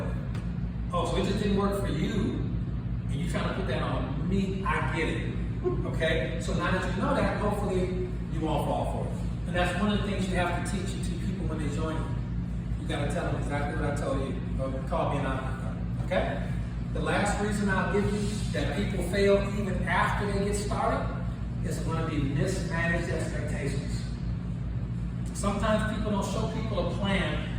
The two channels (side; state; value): both; identical; correlation 1.00